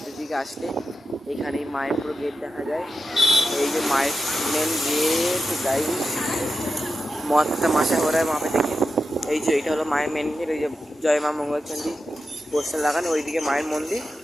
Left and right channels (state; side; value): normal; both; correlation 0.90